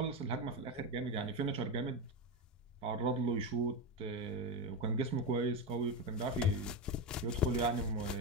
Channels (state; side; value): normal; both; correlation 0.14